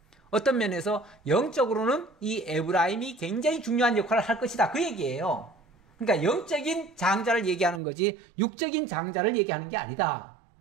어떤 면에서 영적으로는 이 에브라임이 굉장히 중요한 역할을 할 것이다. 그 얘기예요. 그러니까 영적인 장자를 얘기하는 거지 육적인 장자를 얘기하는 게 아니다.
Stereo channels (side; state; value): left; drops out; at 7.8 s